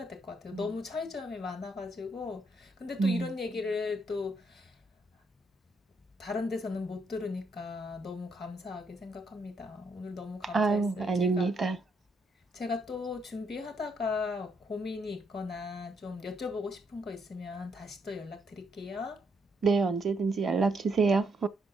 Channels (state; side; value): normal; both; correlation 0.74